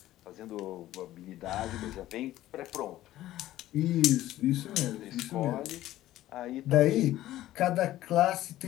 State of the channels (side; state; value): right; quieter; 14.6 dB